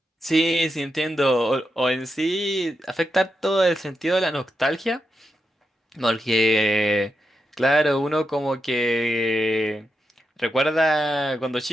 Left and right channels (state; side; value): normal; both; correlation 0.87